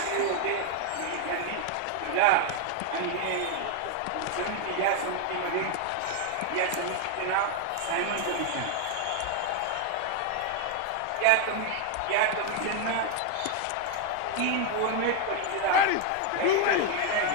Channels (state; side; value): different; both; correlation 0.00